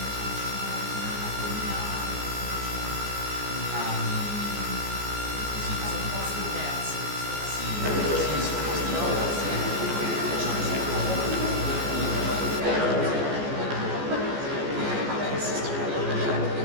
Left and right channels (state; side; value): late; left; 14 ms